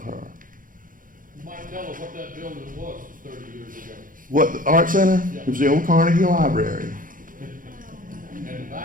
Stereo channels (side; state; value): left; late; 0.40 ms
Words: her. You might tell us what that building was 30 years ago. What, the Art Center? It was the old Carnegie Library. And the